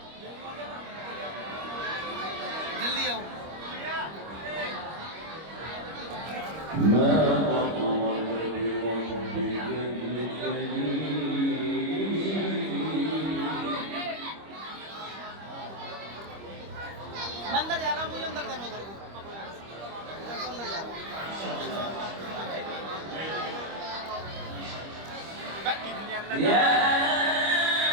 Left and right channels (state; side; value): late; left; 25 ms